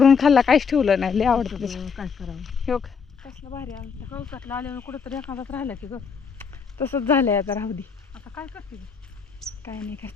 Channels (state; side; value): quieter; right; 6.1 dB